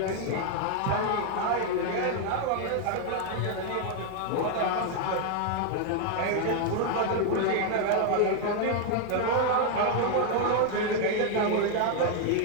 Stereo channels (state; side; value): different; both; correlation 0.00